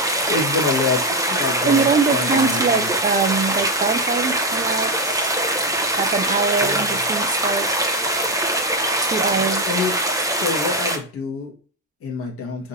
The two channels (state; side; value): normal; both; correlation 0.07